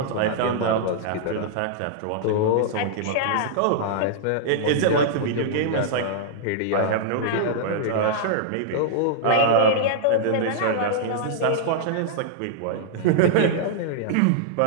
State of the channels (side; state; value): both; different; correlation -0.02